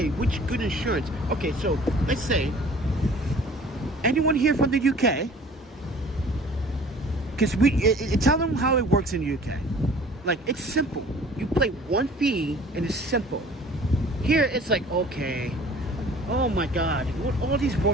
which good insurance. Okay, so let's say anyone here from the UK? Because tell them how it works in the UK. Like, it's simple. You pay one fee and it's simple. Here it's like, okay, oh my god, what all these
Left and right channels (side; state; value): both; normal; correlation 0.49